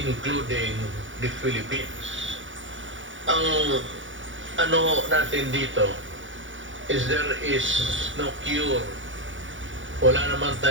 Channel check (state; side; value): late; left; 0.56 ms